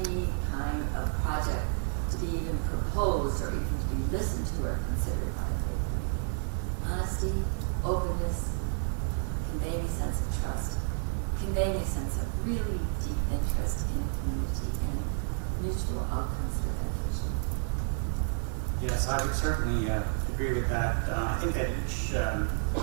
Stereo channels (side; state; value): left; silent; 57 dB below the other